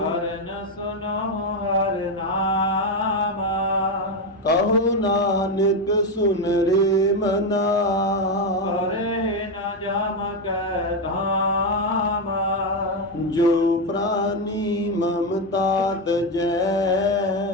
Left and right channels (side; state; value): both; normal; correlation 0.10